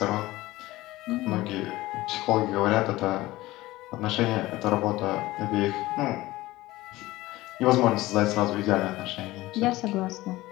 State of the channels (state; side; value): quieter; right; 18.1 dB